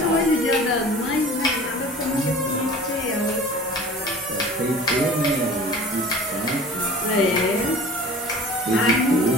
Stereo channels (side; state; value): both; normal; correlation 0.42